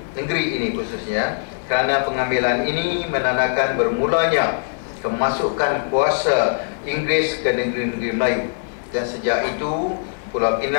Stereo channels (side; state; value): right; silent; digital silence